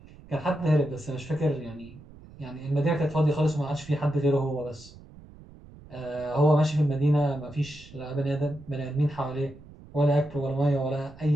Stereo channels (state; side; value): noise; right; rumble, 20 dB below the sound